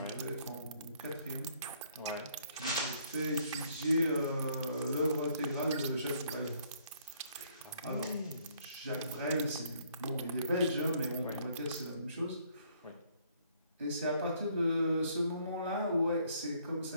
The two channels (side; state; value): both; inverted; correlation -0.65